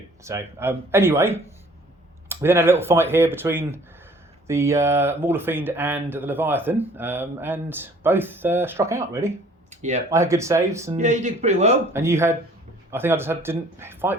So anyway, we then had a little fight here between the Mauler Fiend and the Leviathan, and both struck out really. Yeah. I had good saves, and Yeah, you did pretty well. And you had, I think I just didn't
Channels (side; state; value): both; normal; correlation 0.54